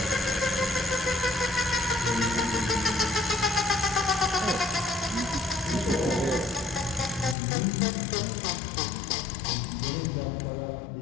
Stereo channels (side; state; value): right; drops out; at 7.4 s